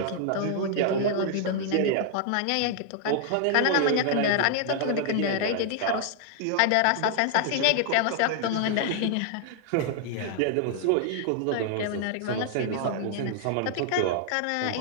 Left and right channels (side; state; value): both; different; correlation -0.01